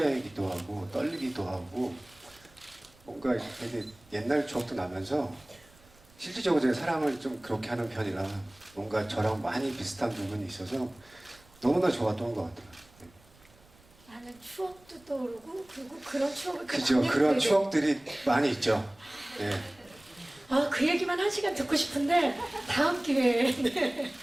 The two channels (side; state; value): right; noise; rumble, 28 dB below the sound